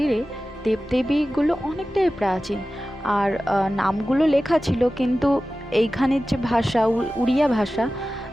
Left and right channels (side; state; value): both; normal; correlation 0.95